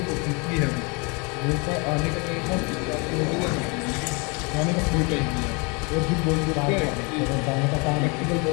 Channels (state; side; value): quieter; right; 30.9 dB